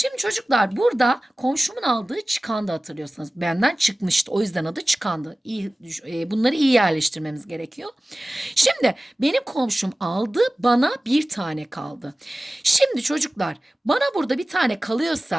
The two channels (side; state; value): both; normal; correlation 0.97